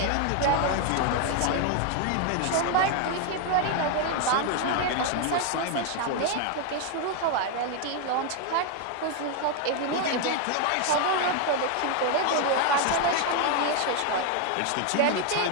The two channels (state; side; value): different; both; correlation 0.01